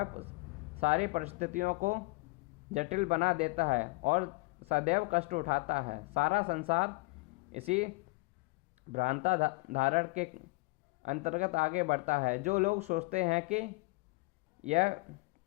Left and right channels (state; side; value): quieter; right; 26.3 dB